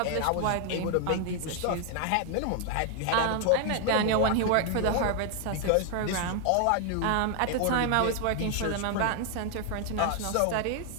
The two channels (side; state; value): both; different; correlation 0.00